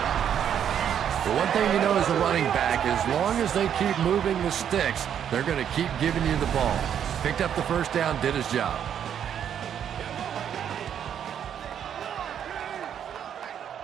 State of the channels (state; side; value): quieter; left; 9.0 dB